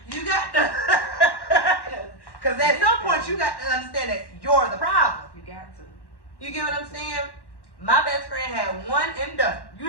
You got to, because at some point you got to understand that you're the problem. You got to. You get what I'm saying? My best friend had one and done.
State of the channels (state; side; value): late; right; 1.1 ms